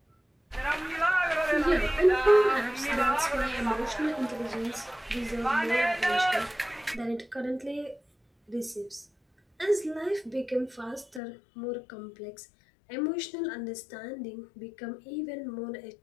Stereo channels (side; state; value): right; drops out; at 11.2 s